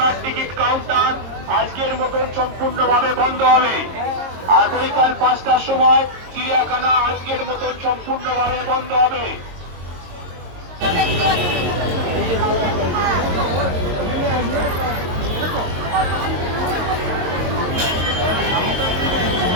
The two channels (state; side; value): late; left; 22 ms